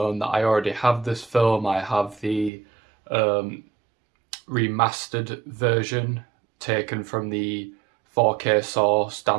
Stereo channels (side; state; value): left; drops out; at 2.5 s